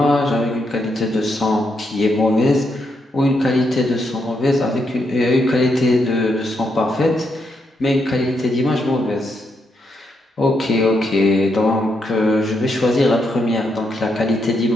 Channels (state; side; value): normal; both; correlation 0.80